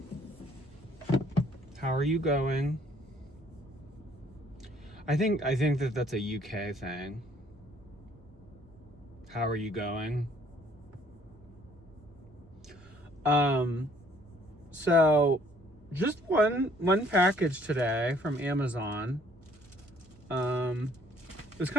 How are you going? I think that that's a UK thing. How are you going? So just one package today from Amazon. It was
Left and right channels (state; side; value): normal; both; correlation 0.61